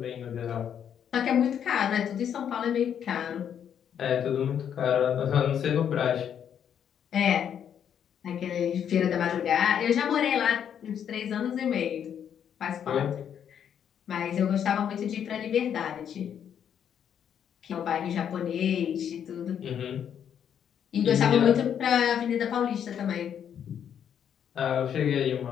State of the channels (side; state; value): right; quieter; 8.8 dB